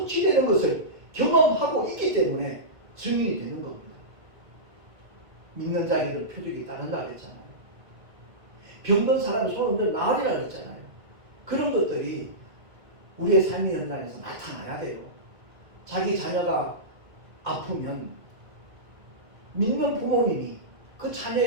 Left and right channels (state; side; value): late; left; 1.6 ms